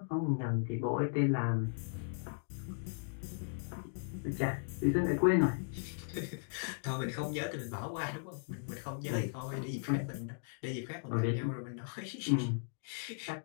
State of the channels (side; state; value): right; silent; digital silence